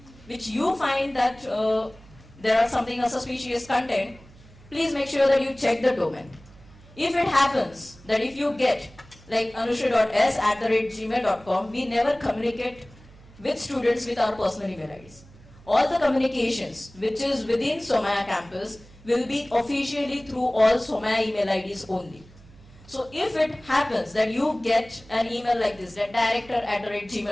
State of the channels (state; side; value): noise; right; hum, 23 dB below the sound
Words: which you find that there are something suspicious content, please make sure that you check the domain. If it happens that if you get like anushri.s@gmail.com, we never communicate with students with our personal email IDs. All the communications which is within SOMA campus will be officially through all SOMA email IDs only. So if it happens that you get an email like this, that